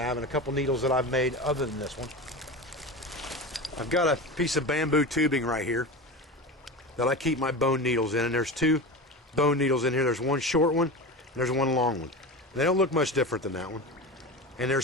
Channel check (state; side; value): normal; both; correlation 0.26